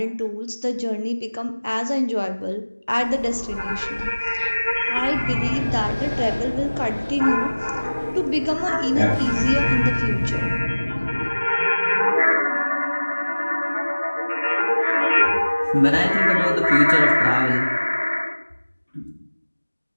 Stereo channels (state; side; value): inverted; both; correlation -1.00